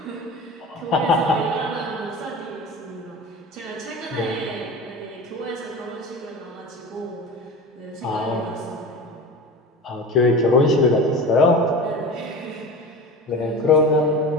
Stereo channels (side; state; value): both; normal; correlation 0.32